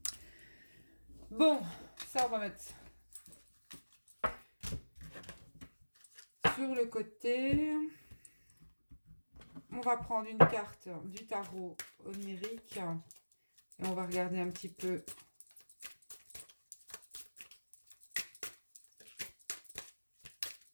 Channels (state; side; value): inverted; both; correlation -1.00